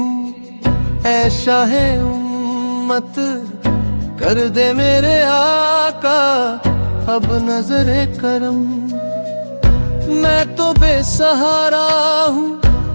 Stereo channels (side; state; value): both; inverted; correlation -1.00